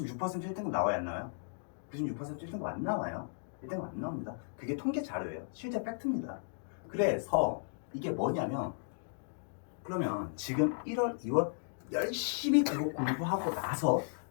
1등급 나와야 안 나와요? 96% 1등급 안 나와요. 1등급 안 나옵니다. 그게 통계 자료예요. 실제 팩트입니다. 그래서 이게 뭐냐면, 그러면 지금 1월, 2월 열심히 그거 공부하고 나서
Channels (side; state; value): right; silent; digital silence